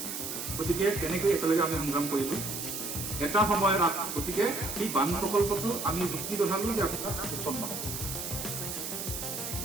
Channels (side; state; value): right; noise; hiss, 5 dB below the sound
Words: গতিকে তেনেকৈ একেলগে আমি সংগ্ৰাম কৰিলোঁ এটা সময়ত। গতিকে সেই বান প্ৰকল্পটো আমি যুক্তি দেখালোঁ যে আপোনাৰ সুচল নহ'ব।